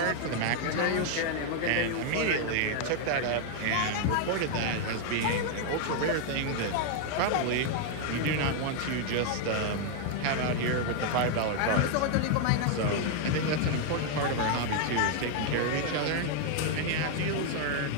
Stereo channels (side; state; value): both; different; correlation 0.00